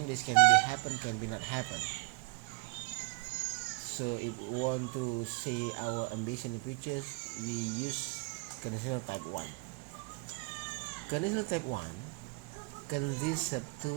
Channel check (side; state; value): left; quieter; 30.0 dB